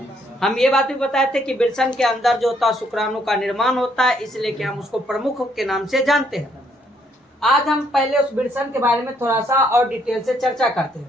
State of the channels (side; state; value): both; normal; correlation 0.69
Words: हम ये बात भी बताए थे कि वृषण के अंदर जो होता है शुक्राणु का निर्माण होता है, इसलिए कि हम उसको प्रमुख के नाम से जानते हैं। आज हम पहले उस वृषण के बारे में थोड़ा सा और डिटेल से चर्चा करते